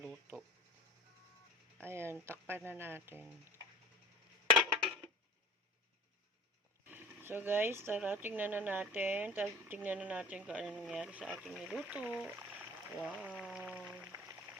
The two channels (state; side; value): normal; both; correlation 0.39